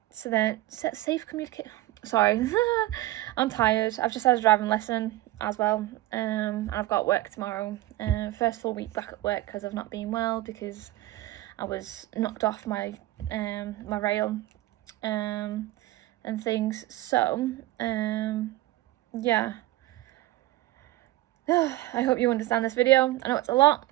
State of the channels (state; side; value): quieter; left; 17.0 dB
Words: then safe communicate. Sorry, I'm tired. I've just had a driving lesson as well. And I've got work tomorrow. First full week back at work because I've not been well, because I was knocked off my my rail and things. So yeah. I hope you understand this video. I know it's a lot,